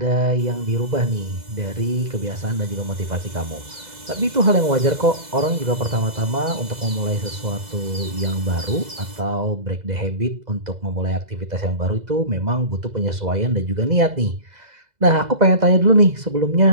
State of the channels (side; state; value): left; late; 2.0 ms